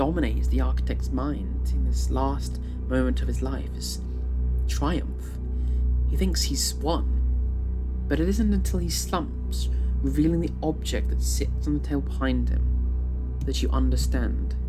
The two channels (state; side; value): identical; both; correlation 1.00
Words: the architect's mind in this last moment of his life is triumph. He thinks he's won, but it isn't until he slumps, revealing the object that sits on the table behind him, that you understand